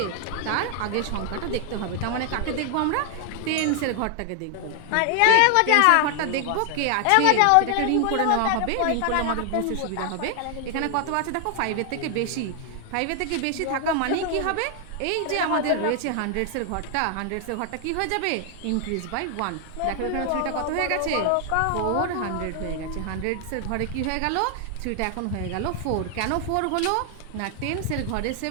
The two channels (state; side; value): different; both; correlation 0.00